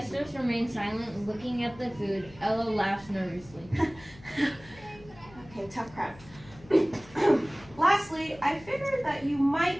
remain silent, looking at the food. Ella laughs nervously. Okay, tough crab. Lastly, I figured that you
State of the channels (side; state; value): left; noise; hum, 21 dB below the sound